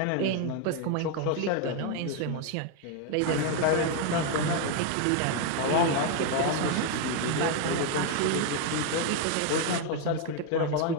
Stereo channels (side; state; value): both; different; correlation 0.01